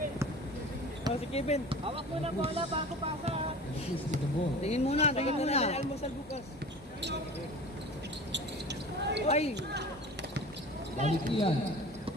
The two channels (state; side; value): normal; both; correlation 0.38